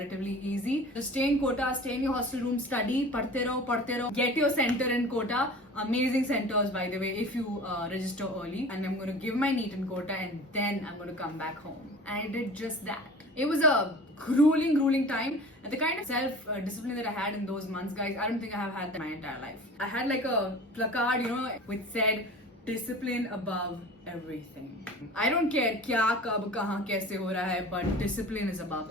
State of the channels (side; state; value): both; normal; correlation 0.40